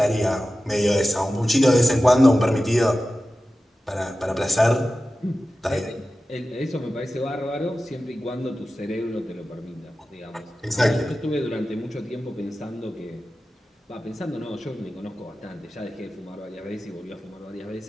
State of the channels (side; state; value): both; normal; correlation 0.94